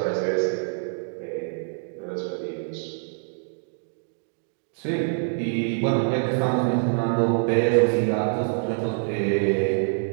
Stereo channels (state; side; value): silent; left; digital silence